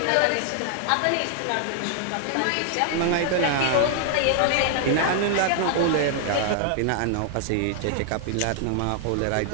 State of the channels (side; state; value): both; different; correlation 0.00